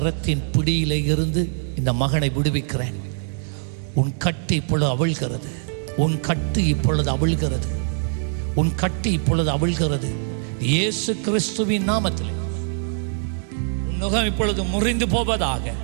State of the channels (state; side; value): silent; left; digital silence